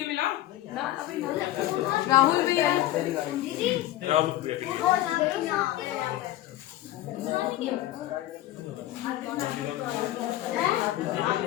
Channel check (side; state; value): right; quieter; 14.7 dB